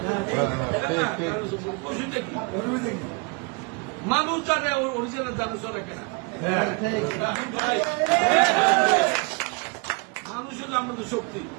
মানুষ জানে অরিজিনাল জানা রাখে না মানুষ হলো আমাদের শক্তি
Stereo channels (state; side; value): quieter; left; 31.7 dB